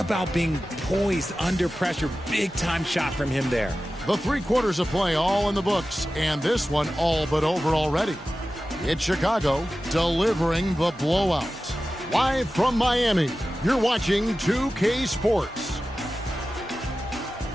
being poised under pressure. Big time shot from him there. The 3 quarters of play all in the books, and this one all but over already. It's Chicago delivering the blowout. Live from Miami, you're watching 2K Sports.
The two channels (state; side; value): normal; both; correlation 0.95